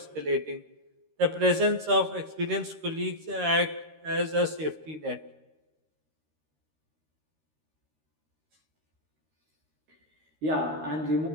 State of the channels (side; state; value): left; late; 13 ms